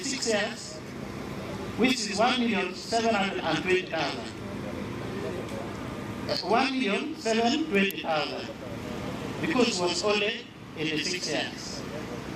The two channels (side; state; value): both; identical; correlation 1.00